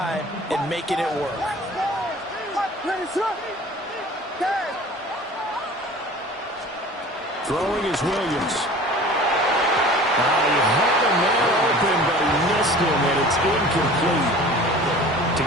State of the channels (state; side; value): normal; both; correlation 0.43